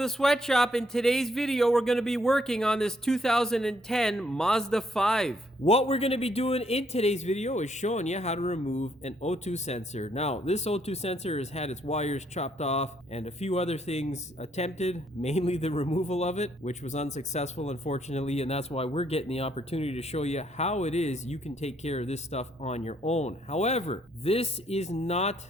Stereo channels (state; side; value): normal; both; correlation 0.70